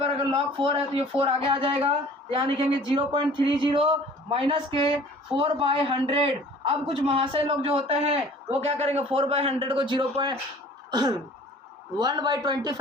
अगर log 4 है तो ये 4 आगे आ जाएगा। तो यहाँ लिखेंगे 0.30 माइनस के 4/100। अब कुछ महाशय लोग जो होते हैं वो क्या करेंगे, 4/100 को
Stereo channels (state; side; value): normal; both; correlation 0.48